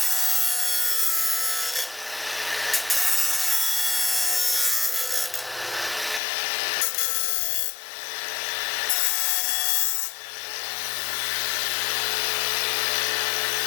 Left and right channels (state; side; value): drops out; right; at 6.2 s